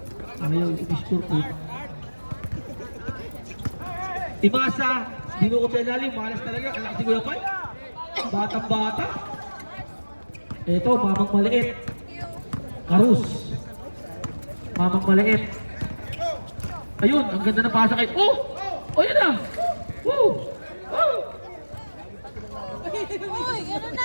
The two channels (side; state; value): both; inverted; correlation -1.00